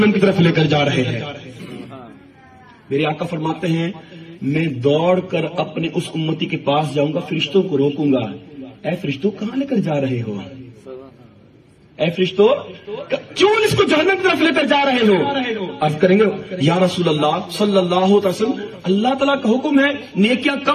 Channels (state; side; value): identical; both; correlation 1.00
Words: کی طرف لے کر جا رہے ہیں. میرے آقا فرماتے ہیں میں دوڑ کر اپنے اس امتی کے پاس جاؤں گا فرشتوں کو روکوں گا اے فرشتوں کہاں لے کر جا رہے ہو اے فرشتوں کیوں اس کو جہنم کی طرف لے کر جا رہے ہو. عرض کریں گے یا رسول اللہ صلی اللہ علیہ وسلم اللہ تعالیٰ کا حکم ہے نیکیاں